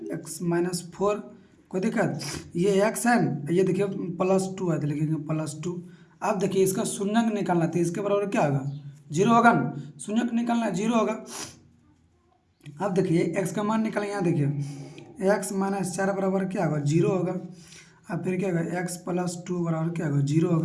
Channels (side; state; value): both; identical; correlation 1.00